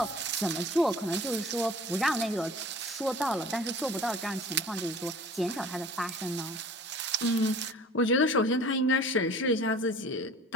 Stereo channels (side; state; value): both; normal; correlation 0.46